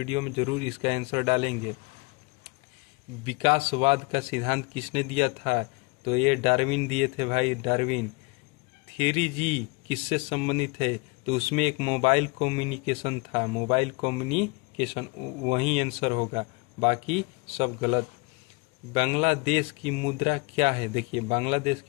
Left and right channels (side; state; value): right; quieter; 28.7 dB